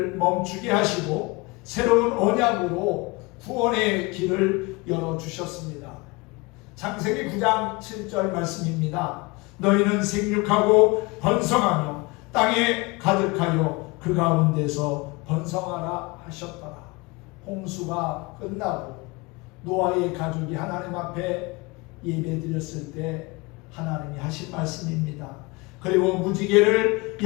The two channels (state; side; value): quieter; right; 25.3 dB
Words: 멈추게 하시고 새로운 언약으로 구원의 길을 열어주셨습니다. 창세기 9장 7절 말씀입니다. 너희는 생육하고 번성하며 땅에 가득하여 그 가운데서 번성하라 하셨더라. 홍수가 끝나고 노아의 가족이 하나님 앞에 예배드렸을 때 하나님이 하신 말씀입니다. 그리고 무지개를